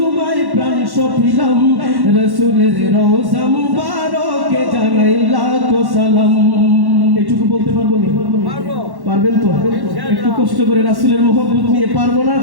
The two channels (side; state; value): left; late; 1.1 ms